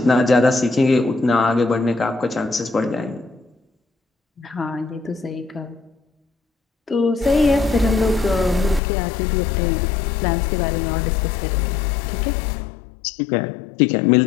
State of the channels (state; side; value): drops out; right; at 8.8 s